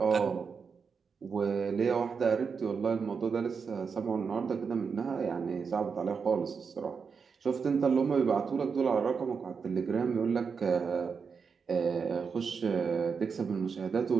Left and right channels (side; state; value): left; quieter; 5.7 dB